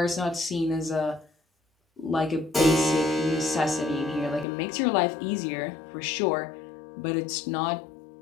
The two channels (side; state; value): right; drops out; at 4.5 s